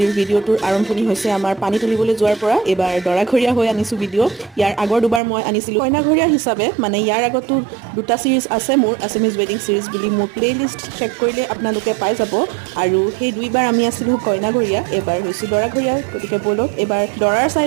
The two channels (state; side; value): drops out; left; at 5.2 s